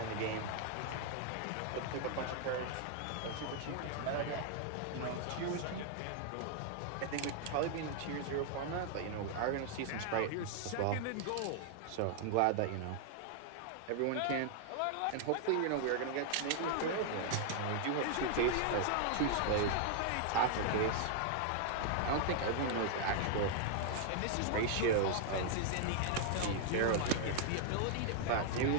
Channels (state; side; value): different; both; correlation 0.00